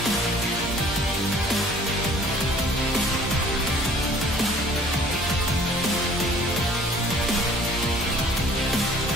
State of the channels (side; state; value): both; normal; correlation 0.53